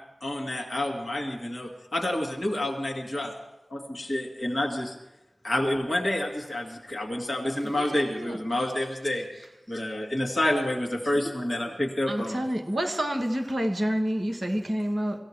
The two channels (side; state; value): both; normal; correlation 0.96